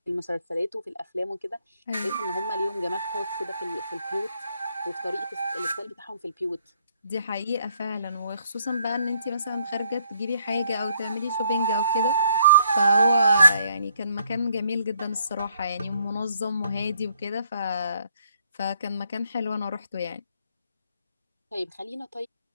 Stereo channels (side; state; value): both; inverted; correlation -0.67